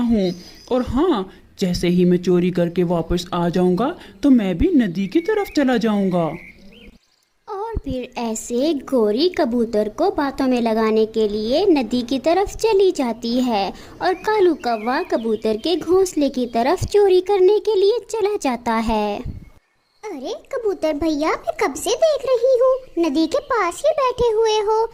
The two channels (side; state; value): both; identical; correlation 1.00